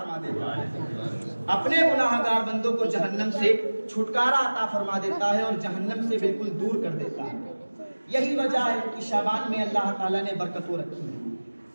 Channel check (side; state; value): both; inverted; correlation -1.00